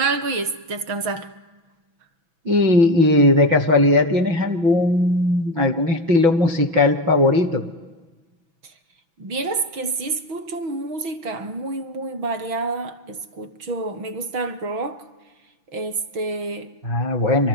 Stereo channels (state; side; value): late; left; 6.1 ms